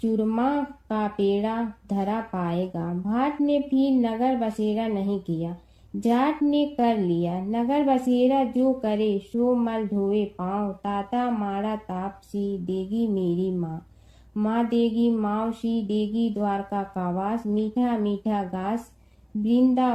चूरमा का पेड़ा धरा पाएगा। भाट ने फिर नगर बसेरा नहीं किया, जाट ने कर लिया। नगर बसेरा जो करे सो मल धोए पाँव, ताता माड़ा तापसी देगी मेरी माँ, माँ देगी मावसी देगी द्वारका का वास, मीठा मीठा घास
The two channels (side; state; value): both; identical; correlation 1.00